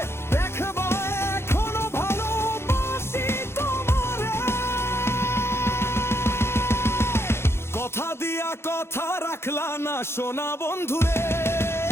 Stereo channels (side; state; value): right; late; 0.12 ms